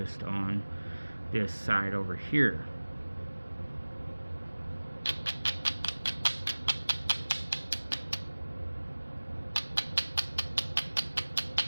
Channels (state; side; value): inverted; both; correlation -1.00